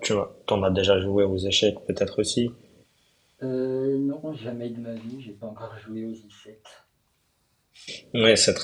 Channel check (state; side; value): identical; both; correlation 1.00